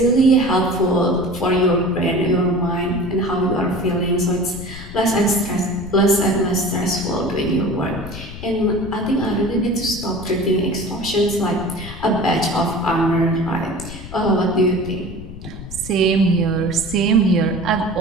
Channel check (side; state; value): left; noise; rumble, 13 dB below the sound